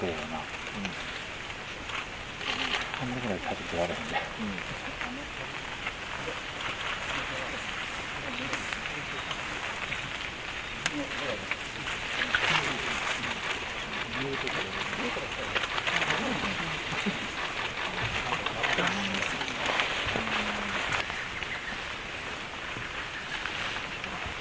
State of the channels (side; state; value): both; identical; correlation 1.00